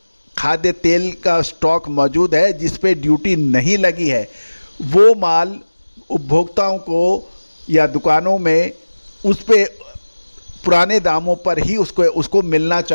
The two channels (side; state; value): both; inverted; correlation -1.00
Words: खाद्य तेल का स्टॉक मौजूद है, जिस पे ड्यूटी नहीं लगी है, वो माल उपभोक्ताओं को या दुकानों में उस पे पुराने दामों पर ही उसको मिलना